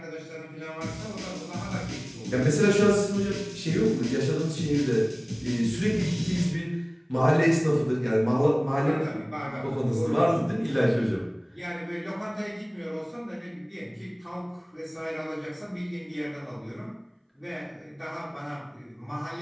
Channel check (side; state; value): both; identical; correlation 1.00